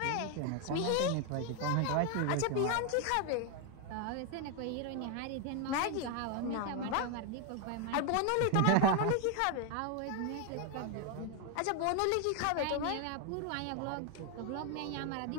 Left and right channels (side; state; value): both; different; correlation 0.01